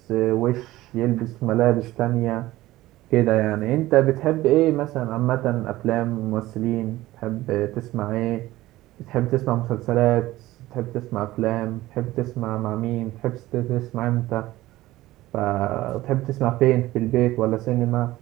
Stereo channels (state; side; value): quieter; left; 16.9 dB